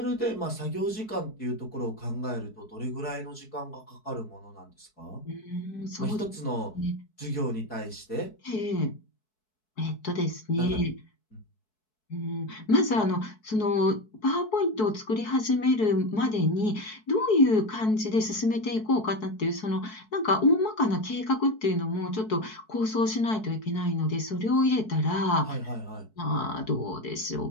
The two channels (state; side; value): late; right; 4.6 ms